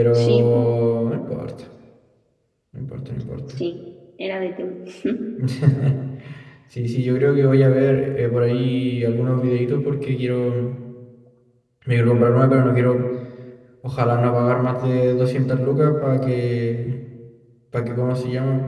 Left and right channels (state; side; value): identical; both; correlation 1.00